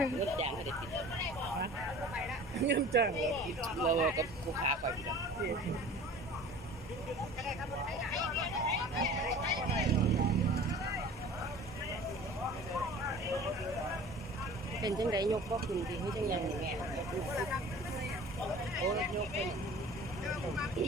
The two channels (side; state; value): both; normal; correlation 0.43